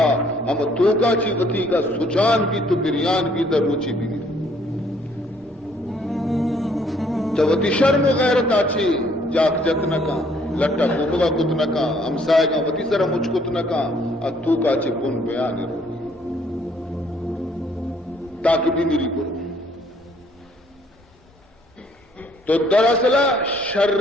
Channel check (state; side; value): normal; both; correlation 0.64